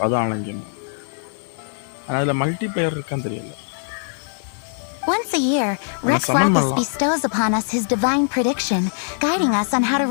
அது ஆன்லைன் கேம். அதுல மல்டிப்ளேயர் இருக்கான்னு தெரியல. Once a year, Rex Lapis bestows upon us his divine prediction, guiding us on how to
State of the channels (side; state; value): right; silent; 64 dB below the other